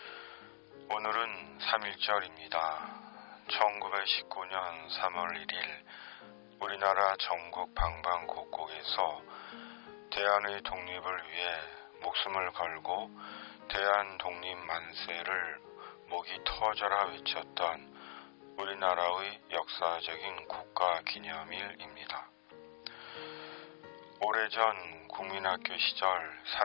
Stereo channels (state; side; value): silent; right; digital silence